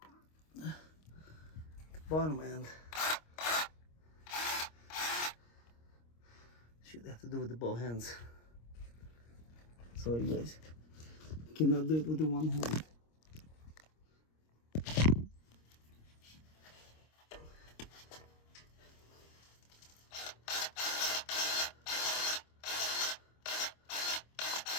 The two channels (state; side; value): late; right; 26 ms